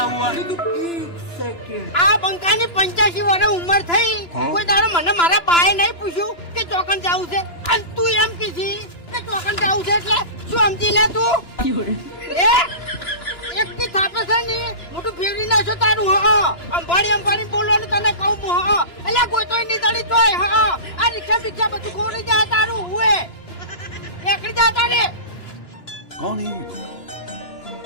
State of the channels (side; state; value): right; late; 2.9 ms